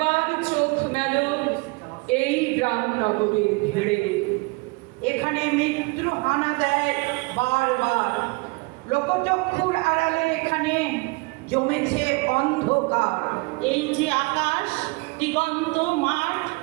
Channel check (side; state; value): left; quieter; 27.2 dB